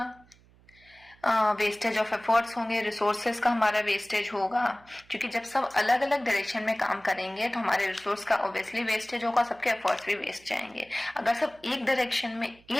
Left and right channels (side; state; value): right; noise; hum, 28 dB below the sound